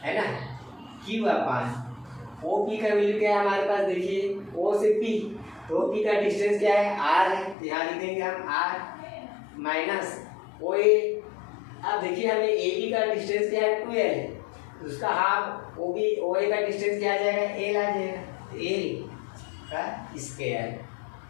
है ना, क्यू अपान ओ पी का वैल्यू क्या है हमारे पास, देखिए ओ से पी, तो पी का डिस्टेंस क्या है, आर है, तो यहाँ लिख देंगे हम आर माइनस ओ ए। अब देखिए हमें ए बी का डिस्टेंस क्या है, 12, उसका हाफ ओ बी ओ ए का डिस्टेंस क्या आ जाएगा, एल आ जाएगा, एल का स्क्वायर।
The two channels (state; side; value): drops out; right; at 7.6 s